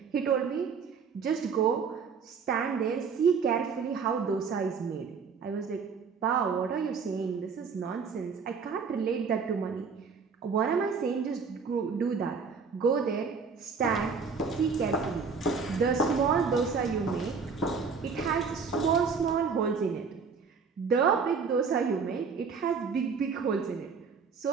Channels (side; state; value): left; quieter; 5.5 dB